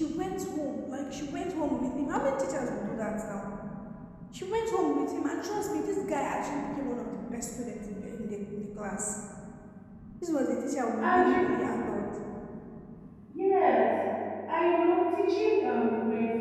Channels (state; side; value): identical; both; correlation 1.00